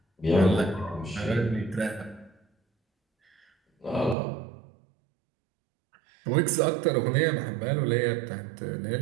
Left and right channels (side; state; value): left; drops out; at 4.2 s